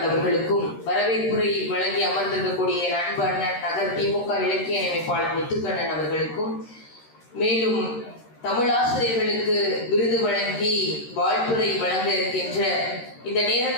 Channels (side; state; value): right; late; 13 ms